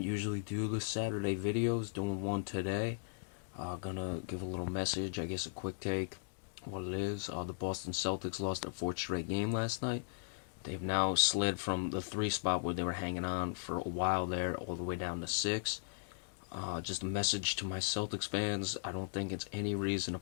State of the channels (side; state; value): right; silent; digital silence